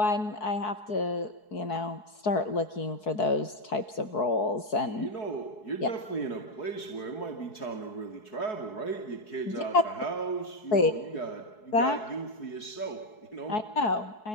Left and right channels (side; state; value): right; late; 4.7 ms